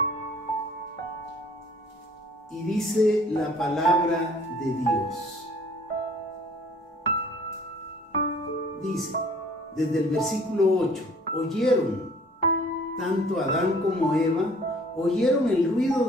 Y dice la palabra de Dios. Dice, desde el versículo 8, oyeron, tanto Adán como Eva, oyeron el ruido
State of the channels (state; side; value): normal; both; correlation 0.54